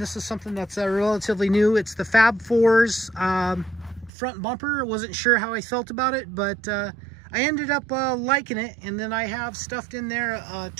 this is something that's relatively new. It's the Fab 4's front bumper. I wasn't sure how I felt about it, but I ended up liking it. And then I have stuffed in there a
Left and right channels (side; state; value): left; drops out; at 4.1 s